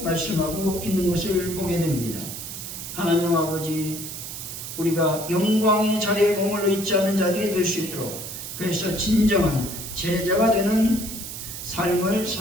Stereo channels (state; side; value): noise; right; hiss, 8 dB below the sound